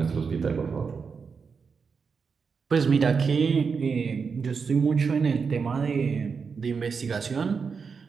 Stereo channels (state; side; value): quieter; left; 5.5 dB